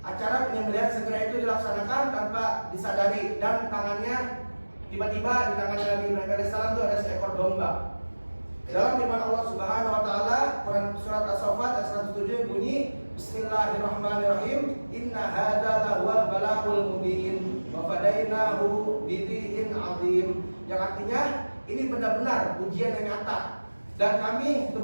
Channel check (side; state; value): both; inverted; correlation -1.00